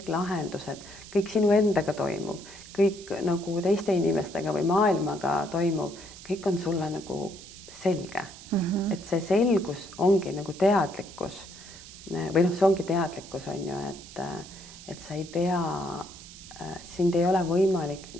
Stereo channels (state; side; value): noise; right; hiss, 17 dB below the sound